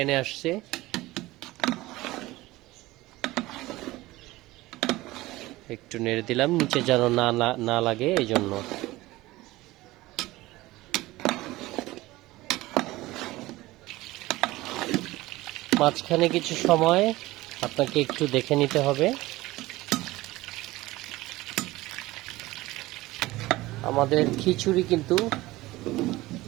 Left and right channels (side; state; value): left; quieter; 18.7 dB